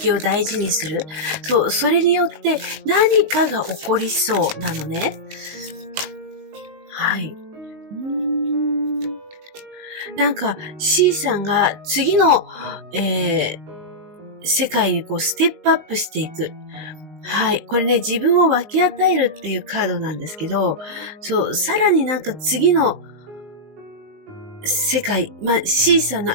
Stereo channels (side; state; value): left; late; 19 ms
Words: を大事にする。そう、それによって何かが起こりそうなのね。はい。C さんが次の、世界にステップアップしていく。はい。これね、自分を分け与えるっていうカードなんですけど、そう、さらに次の世界、C さんの